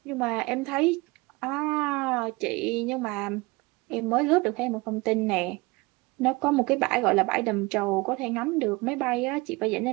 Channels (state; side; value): quieter; left; 24.4 dB